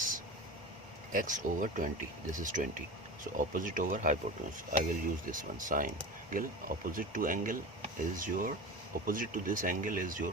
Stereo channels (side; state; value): both; normal; correlation 0.30